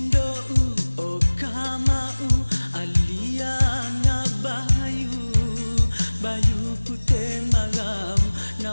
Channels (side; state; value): both; inverted; correlation -1.00